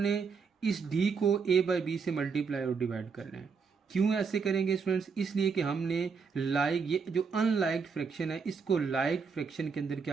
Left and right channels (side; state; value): left; quieter; 5.4 dB